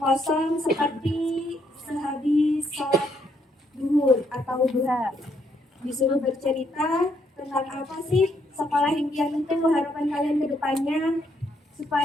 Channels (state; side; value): normal; both; correlation 0.73